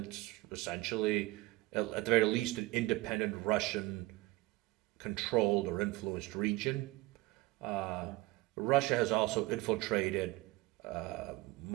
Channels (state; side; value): quieter; left; 20.4 dB